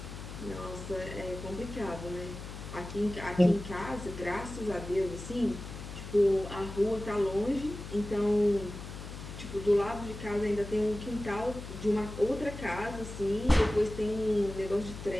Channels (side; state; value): left; noise; hum, 10 dB below the sound